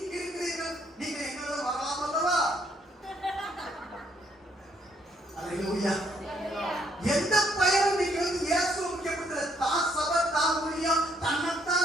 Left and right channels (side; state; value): both; normal; correlation 0.69